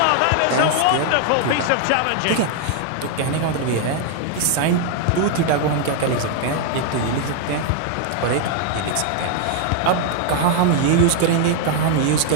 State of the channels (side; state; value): both; different; correlation 0.00